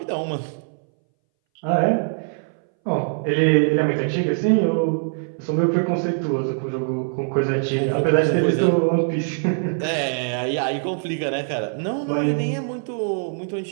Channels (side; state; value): left; silent; 61 dB below the other